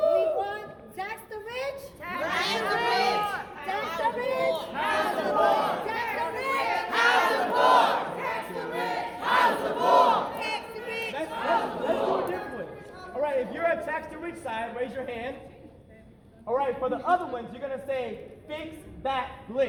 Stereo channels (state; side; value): identical; both; correlation 1.00